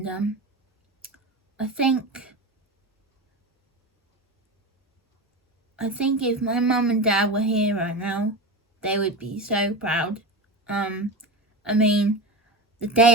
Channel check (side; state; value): both; normal; correlation 0.23